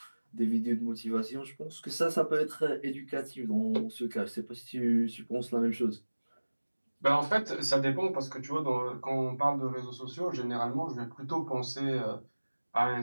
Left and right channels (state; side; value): inverted; both; correlation -1.00